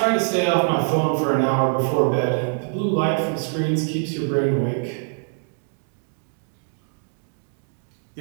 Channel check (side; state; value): left; silent; 63 dB below the other